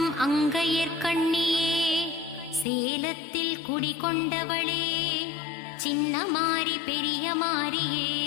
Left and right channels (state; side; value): drops out; right; at 2.7 s